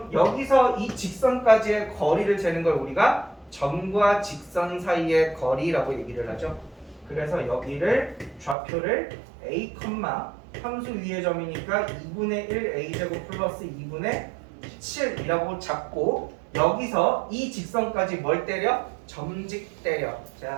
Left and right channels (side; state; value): left; drops out; at 8.6 s